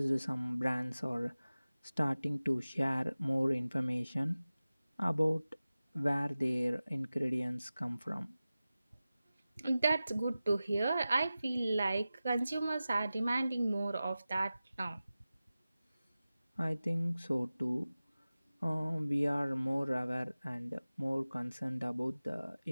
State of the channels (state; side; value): inverted; both; correlation -0.96